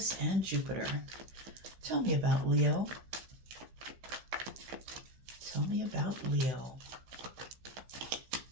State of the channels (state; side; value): late; left; 15 ms